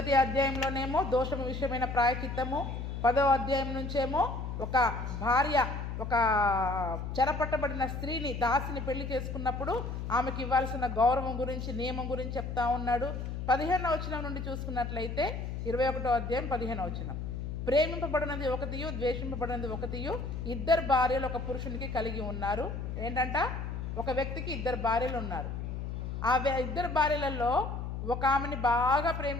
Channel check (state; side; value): noise; left; hum, 5 dB below the sound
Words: అధ్యాయంలోనేమో దోషము విషయమైన ప్రాయచిత్తము, 10వ అధ్యాయం నుంచేమో ఒక భార్య ఒక చెరపట్టబడిన స్త్రీని దాసిని పెళ్లి చేసుకున్నప్పుడు ఆమెకి ఇవ్వాల్సిన గౌరవం గురించి, నియమం గురించి చెప్తా ఉన్నాడు. 15వ వచనం నుండి చూసుకున్నట్లయితే 21వ అధ్యాయం 15వ వచనం, ప్రేమింపబడినది ఒకటియు ద్వేషింపబడినది ఒకటియు, ఇద్దరు భార్యలు ఒక పురుషునికి కలిగి ఉన్నారు. ఏంటంట, ఒక వ్యక్తికి ఇద్దరు భార్యలు ఉన్నారు. ఆ ఇద్దరు భార్యలలో ఒక ఆమెని బాగా